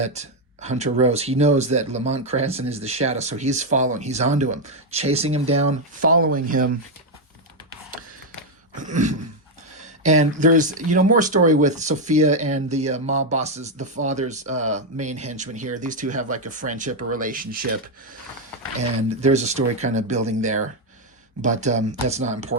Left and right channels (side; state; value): both; normal; correlation 0.03